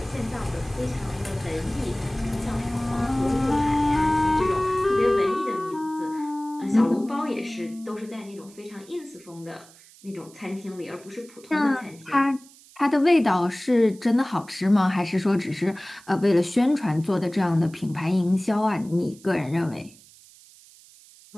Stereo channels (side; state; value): right; noise; hiss, 24 dB below the sound